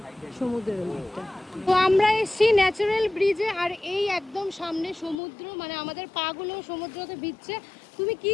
সমুদ্রের ওই দিকটা। তো আমরা এসছি ন্যাচারাল ব্রিজে, আর এই একদম সামনে সমুদ্র, মানে আমাদের পাগুলো সমুদ্রতে ভিজছে। তুমি কি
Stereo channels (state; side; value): drops out; right; at 5.2 s